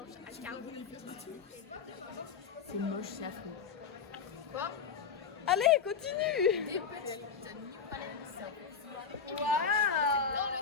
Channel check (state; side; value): quieter; right; 6.2 dB